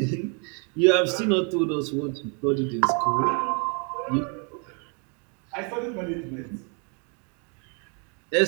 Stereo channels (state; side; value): quieter; left; 36.9 dB